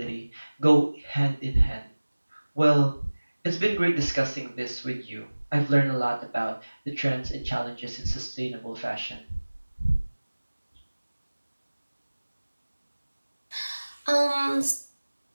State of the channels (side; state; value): both; inverted; correlation -1.00